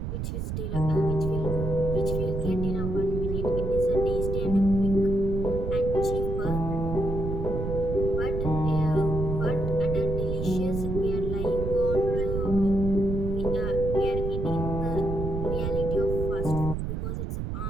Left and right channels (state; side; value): noise; right; rumble, 3 dB below the sound